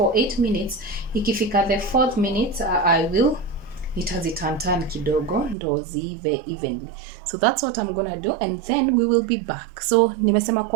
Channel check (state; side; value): drops out; left; at 5.6 s